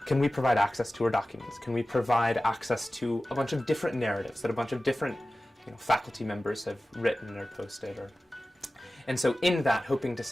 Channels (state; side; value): normal; both; correlation 0.96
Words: can we provide access to her documents? Can we provide access to a bunch of different narratives that a bunch of different faculty members have written or posted? And so in that, hoping to